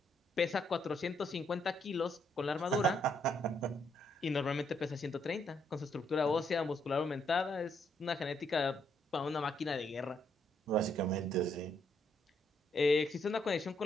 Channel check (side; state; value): both; normal; correlation 0.74